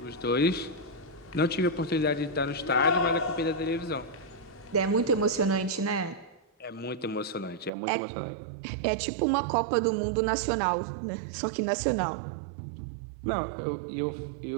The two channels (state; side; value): drops out; left; at 7.7 s